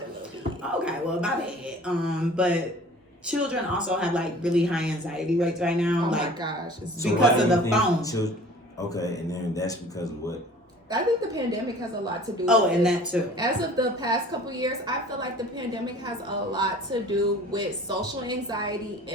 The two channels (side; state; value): both; normal; correlation 0.47